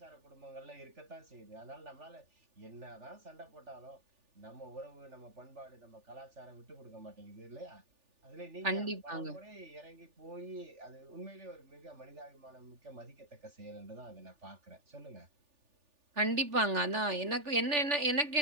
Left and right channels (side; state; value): left; late; 3.4 ms